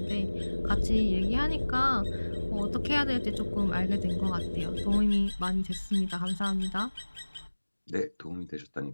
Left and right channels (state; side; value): inverted; both; correlation -1.00